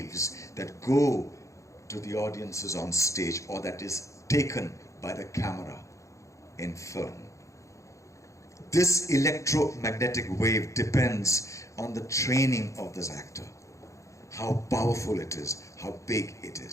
that go to the audiences on stage, or that is taken by the camera in film. This electromagnetic wave depends on the training of this actor, how powerful it is, how big it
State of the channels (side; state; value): right; late; 0.15 ms